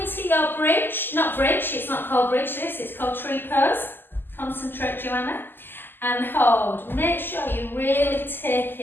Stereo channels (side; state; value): right; late; 0.095 ms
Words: your bridge. Not bridge, it's not called bridge this, it's called tree pose. Concentrate, Joanna. And hold. Make sure you're really